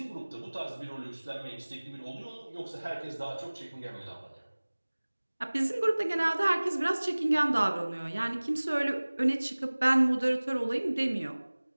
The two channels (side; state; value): both; inverted; correlation -1.00